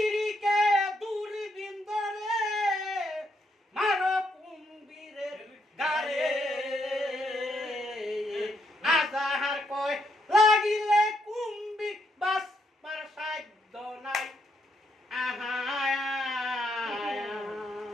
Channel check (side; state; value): both; normal; correlation 0.76